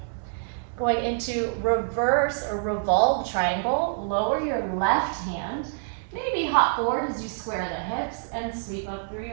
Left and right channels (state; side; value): silent; left; digital silence